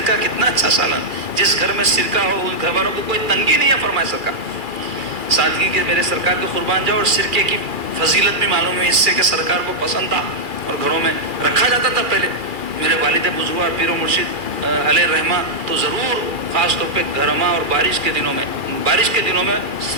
کتنا اچھا سالن، جس گھر میں سرکہ ہو ان گھر والوں کو کوئی تنگی نہیں ہے، فرمایا سرکار سادگی کے میرے سرکار کے قربان جاؤ۔ اور سرکے کی فضیلت بھی معلوم ہے اس سے کہ سرکار کو پسند تھا اور گھروں میں رکھا جاتا تھا پہلے۔ میرے والد بزرگ پیر و مرشد علیہ رحمہ تو ضرور خاص طور پہ گرما اور بارش کے دنوں میں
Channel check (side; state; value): left; late; 2.4 ms